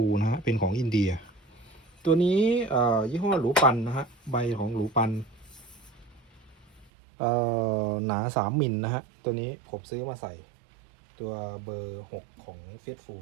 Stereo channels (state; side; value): drops out; left; at 6.9 s